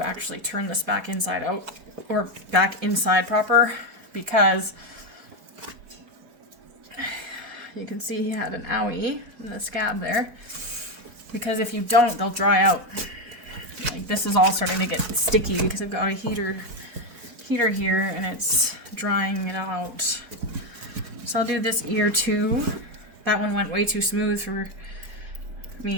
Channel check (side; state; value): left; late; 4.1 ms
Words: actually turn this back inside out, or back inside proper, because you can see he had an owie in the scab there. Because if you don't, they'll dry out. Like this is all starting to get sticky because I've got a heater here and it's drying it out. So I'll do this ear too. That one went way too smooth for